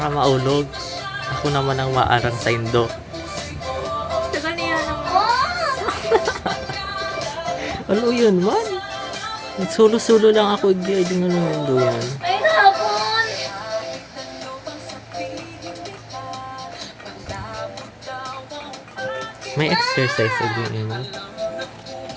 maulog. Ako naman ang maarang sa indo. Tagal niya ng... Halo yun man. Sulo-sulo lang ako. Hindi nga naman do yan. Ay, hapon. May exercise again yun.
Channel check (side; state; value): both; identical; correlation 1.00